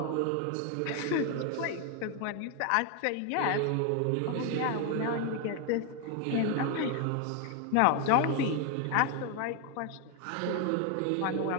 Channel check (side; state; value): both; different; correlation 0.01